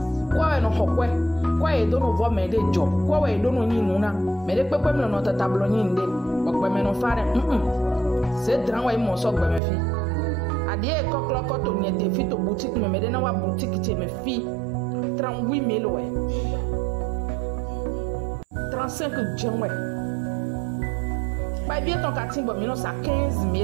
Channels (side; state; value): left; drops out; at 9.6 s